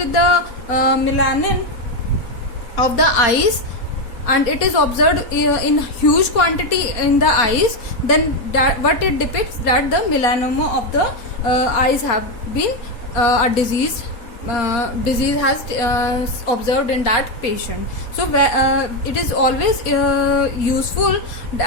the melanin of the eyes, and it is observed in huge quantity in the eyes? Then what it depicts, that the melanoma of the eyes have been a disease has observed in that patient. So it is always useful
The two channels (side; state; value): right; late; 4.2 ms